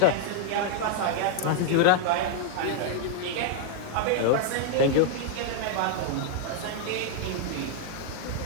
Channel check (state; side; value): different; both; correlation -0.01